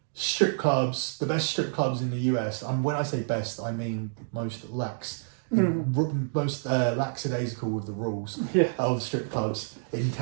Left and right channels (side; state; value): left; silent; digital silence